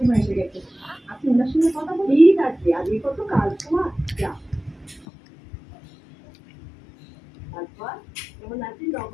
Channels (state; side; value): drops out; right; at 5.1 s